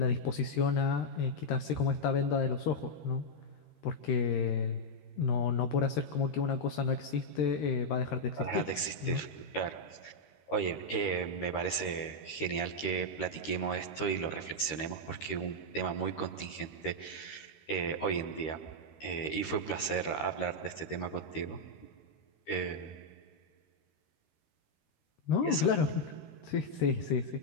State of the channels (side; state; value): right; late; 13 ms